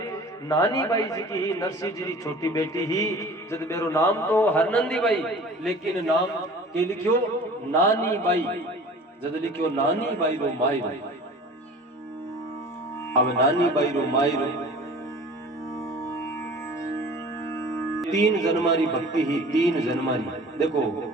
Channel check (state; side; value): normal; both; correlation 0.43